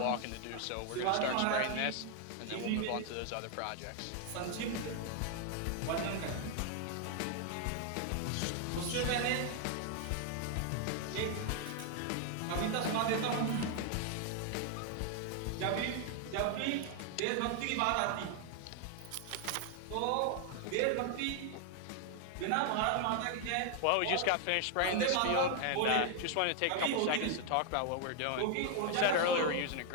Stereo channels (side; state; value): both; different; correlation 0.00